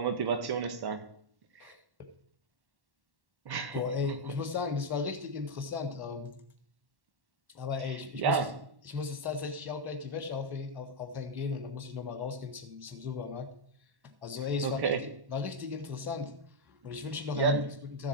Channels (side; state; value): left; late; 1.1 ms